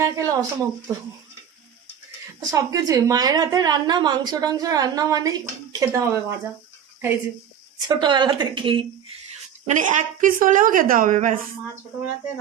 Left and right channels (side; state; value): left; quieter; 8.8 dB